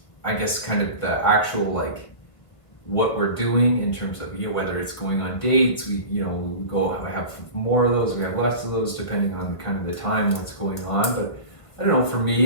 I guess kind of the actual, like, what we're doing in terms of, you know, whether it's going on dates, we, you know, we have more of those, we have less of those, depending on kind of the time, what's going on. But I don't know, for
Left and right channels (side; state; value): right; late; 1.7 ms